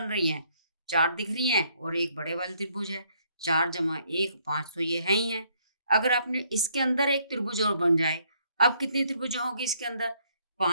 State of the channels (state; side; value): inverted; both; correlation -0.68